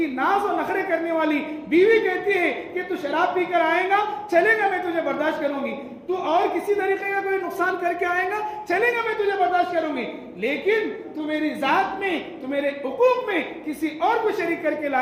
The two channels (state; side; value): identical; both; correlation 1.00